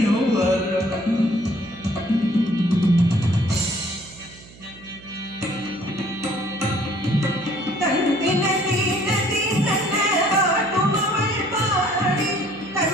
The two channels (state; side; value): noise; right; hum, 22 dB below the sound